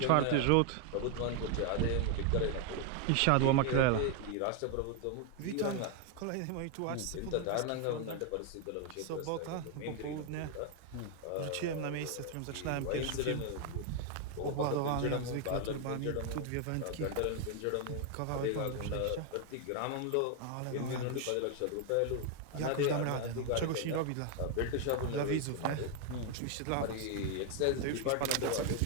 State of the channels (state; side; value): different; both; correlation 0.00